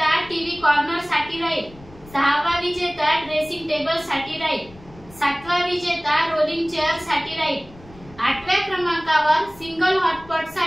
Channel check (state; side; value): noise; left; rumble, 22 dB below the sound